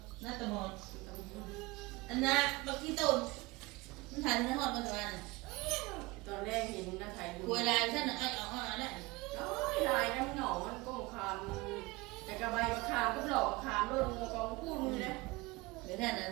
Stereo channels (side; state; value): left; quieter; 22.8 dB